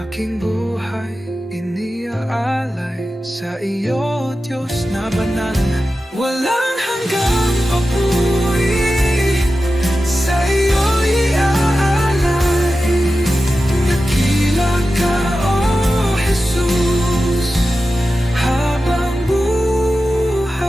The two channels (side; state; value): both; normal; correlation 0.93